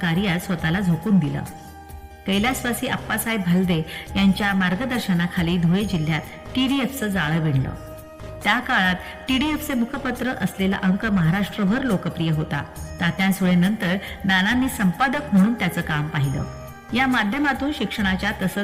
स्वतःला झोकून दिलं. कैलासवासी आप्पासाहेब भालदे यांच्या मार्गदर्शनाखाली धुळे जिल्ह्यात TDFचं जाळं विणलं. त्या काळात TDFचे मुखपत्र असलेला अंक महाराष्ट्रभर लोकप्रिय होता. तात्या सुळेनंतर नानांनी संपादक म्हणून त्याचं काम पाहिलं. या माध्यमातून शिक्षणाच्या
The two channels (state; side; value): identical; both; correlation 1.00